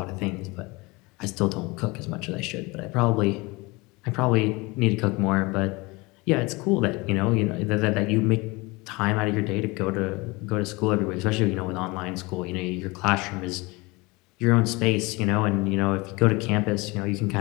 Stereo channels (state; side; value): quieter; right; 24.5 dB